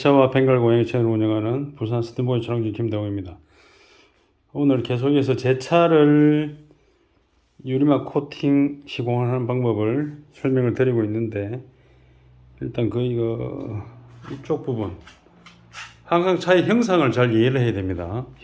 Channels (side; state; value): both; identical; correlation 1.00